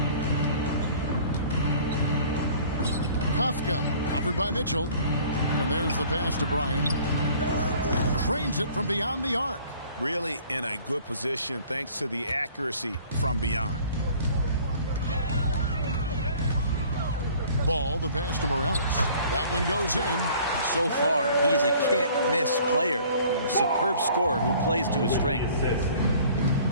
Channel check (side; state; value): both; inverted; correlation -0.52